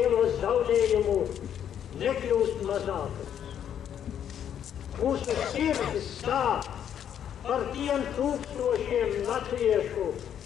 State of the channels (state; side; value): quieter; right; 9.4 dB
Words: zaudējumu nekļūst mazākas. Mūsu sirdis sāp par tiem tūkstošiem latviešu,